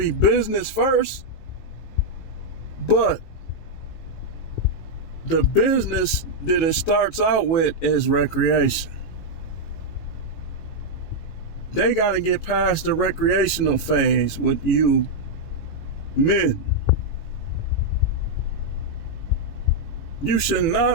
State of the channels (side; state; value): right; late; 18 ms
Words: business first, but the business that it starts out with is recreation. They got to get past the recreational phase with you men. You should